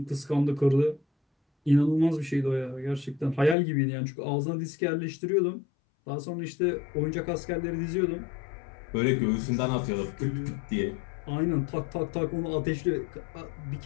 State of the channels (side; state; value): right; drops out; at 3.6 s